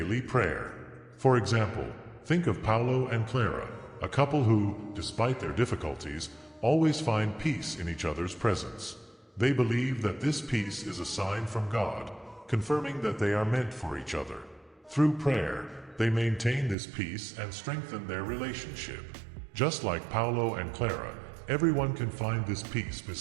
prayer. For example, think of Paulo and Clara, a couple who, despite their difficulties, always find peace in each other's presence. They believe that this peace is a sign from God, confirming that they are meant for each other. Through prayer, they maintain this peace and strengthen their relationship. Just like Paulo and Clara, everyone can find this peace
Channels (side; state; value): left; drops out; at 16.8 s